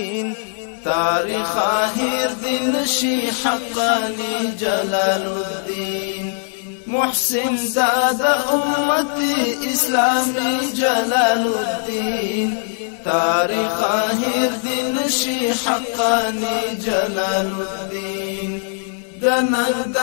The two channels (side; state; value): right; silent; 66 dB below the other